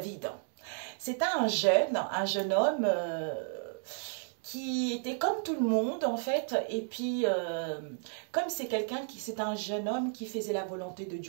c'était un jeune homme qui était comme tout le monde, en fait. Et puis, comme c'est un jeune homme qui faisait la volonté de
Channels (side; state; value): left; silent; digital silence